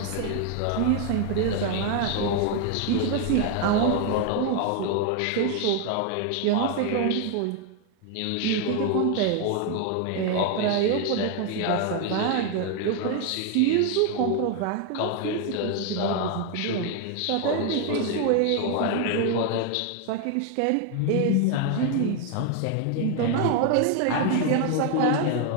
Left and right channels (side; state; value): both; different; correlation 0.01